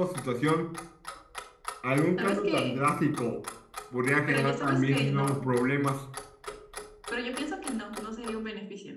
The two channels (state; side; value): identical; both; correlation 1.00